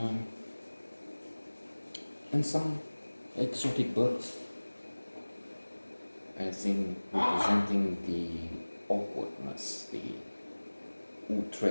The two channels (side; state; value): both; inverted; correlation -1.00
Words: And some exotic birds, as in representing the awkwardness, the